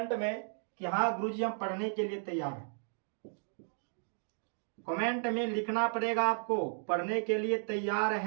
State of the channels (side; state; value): left; silent; digital silence